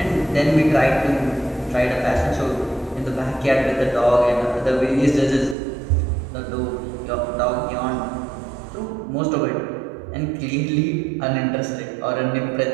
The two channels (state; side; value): drops out; left; at 5.6 s